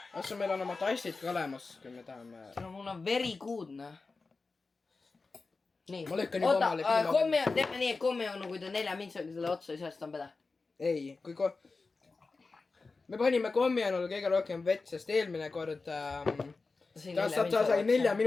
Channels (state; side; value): quieter; right; 4.0 dB